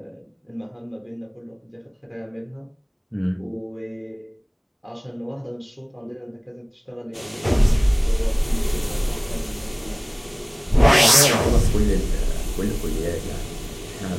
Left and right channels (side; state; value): both; identical; correlation 1.00